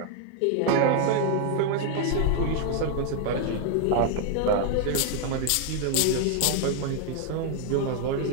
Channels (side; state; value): both; different; correlation 0.00